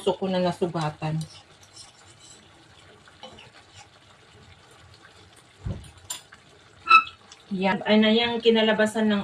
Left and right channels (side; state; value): both; identical; correlation 1.00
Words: ko na nasugatan. Yan. Yung kinalabasan